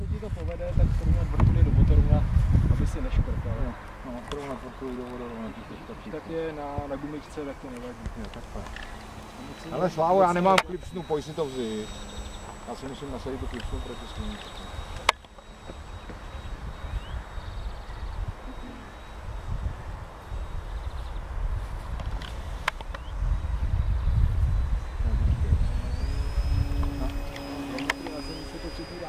se ti to povede, tak srovnat vrtuly do motoruna, aby si neškrtal. No, srovnat vrtuly do vodorovna, tak je na gumičce, tak to nevadí. Jo, takhle. Ale Slávo, já nemám klipsnu, pojď si to vzít. Já si musím nasadit tu klipsnu proti sluníčku.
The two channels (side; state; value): both; identical; correlation 1.00